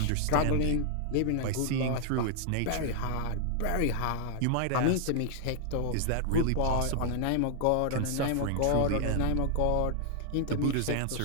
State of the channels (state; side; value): different; both; correlation 0.00